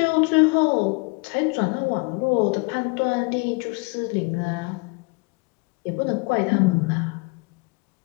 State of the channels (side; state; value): right; quieter; 30.0 dB